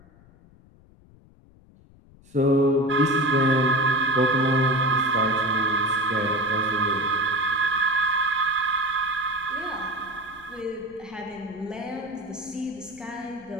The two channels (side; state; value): left; noise; rumble, 26 dB below the sound